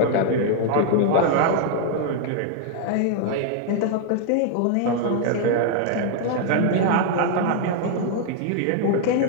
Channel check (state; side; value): different; both; correlation 0.00